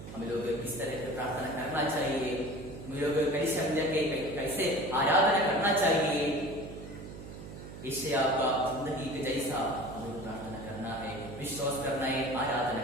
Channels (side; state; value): right; noise; hum, 12 dB below the sound